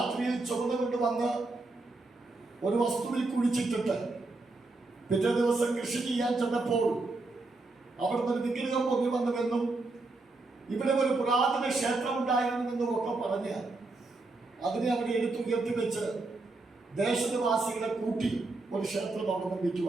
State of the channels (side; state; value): left; quieter; 3.3 dB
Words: ചുമന്നുകൊണ്ട് വന്ന് ഒരു വസ്തുവിൽ കുഴിച്ചിട്ടിട്ട് പിറ്റേ ദിവസം കൃഷി ചെയ്യാൻ ചെന്നപ്പോൾ അവിടുന്ന് ഒരു വിഗ്രഹം പൊങ്ങി വന്നുവെന്നും ഇവിടെ ഒരു പുരാതന ക്ഷേത്രം ഉണ്ടായിരുന്നെന്നും ഒക്കെ പറഞ്ഞ് അതിനെ അവിടെ എടുത്തുയർത്തി വെച്ച് ദേശനിവാസികളെ കൂട്ടി ഒരു ക്ഷേത്രം അവിടെ